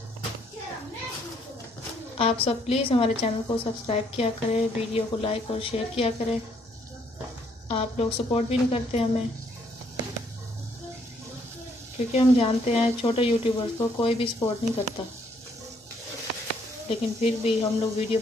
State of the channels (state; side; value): normal; both; correlation 0.68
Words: आप सब प्लीज़ हमारे चैनल को सब्सक्राइब किया करें, वीडियो को लाइक और शेयर किया करें। आप लोग सपोर्ट भी नहीं करते हमें, क्योंकि हम जानते हैं छोटे यूट्यूबर्स को कोई भी सपोर्ट नहीं करता, लेकिन फिर भी हम लोग वीडियो